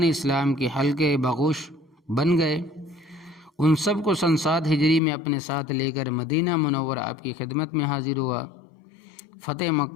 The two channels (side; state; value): right; drops out; at 5.0 s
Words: اسلام کے حلقے بغوش بن گئے۔ ان سب کو سن 7 ہجری میں اپنے ساتھ لے کر مدینہ منورہ آپ کی خدمت میں حاضر ہوا۔ فتح